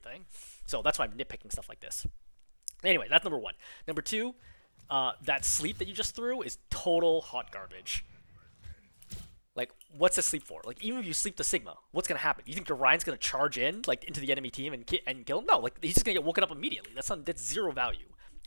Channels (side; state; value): both; inverted; correlation -1.00